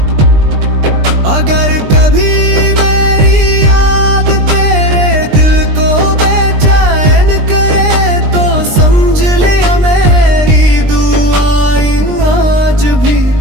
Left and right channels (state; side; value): late; left; 20 ms